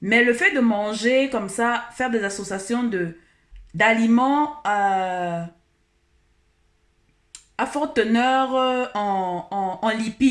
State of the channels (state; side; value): identical; both; correlation 1.00